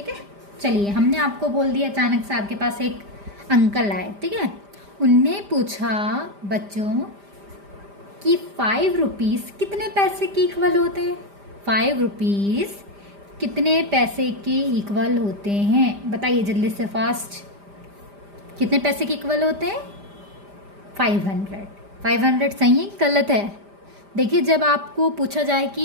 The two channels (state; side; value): late; left; 5.0 ms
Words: है, चलिए हमने आपको बोल दिया, अचानक से आपके पास एक अंकल आए, ठीक है। उनने पूछा बच्चों कि 5 रुपीज़ कितने पैसे के इक्वल होते हैं। 5 रुपीज़ कितने पैसे के इक्वल होते हैं, बताइए जल्दी से, फास्ट। कितने पैसे के इक्वल होते हैं? 500। 500 सही है कि गलत है? देखिए, जब आपको पूछा जाए